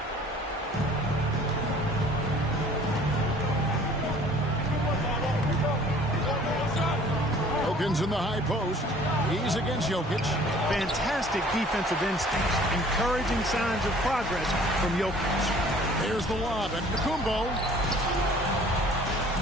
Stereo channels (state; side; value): normal; both; correlation 0.52